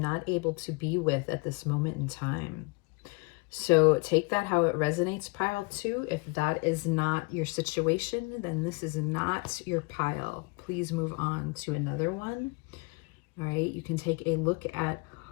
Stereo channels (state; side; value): quieter; right; 28.2 dB